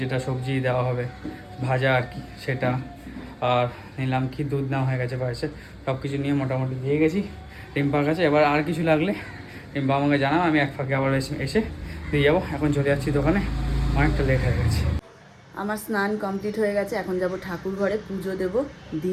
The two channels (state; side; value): identical; both; correlation 1.00